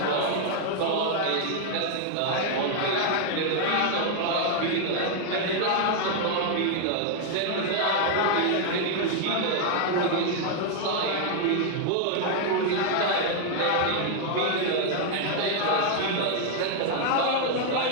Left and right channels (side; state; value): both; different; correlation 0.00